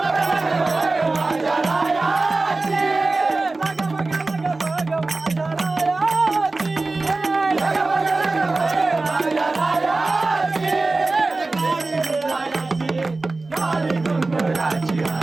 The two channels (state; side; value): quieter; left; 3.4 dB